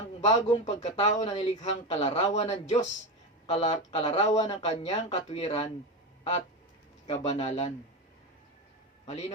bagong pagkatao na nilikhang kalarawan ng Diyos, kalarawan ng kanyang katwiran at kabanalan.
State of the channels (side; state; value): both; normal; correlation 0.18